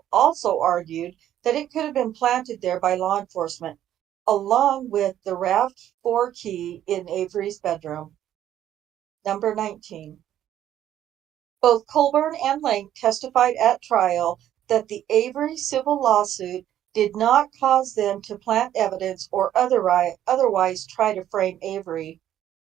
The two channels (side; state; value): left; quieter; 11.5 dB